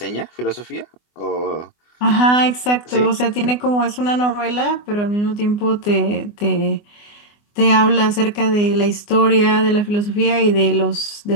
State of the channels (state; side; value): late; right; 24 ms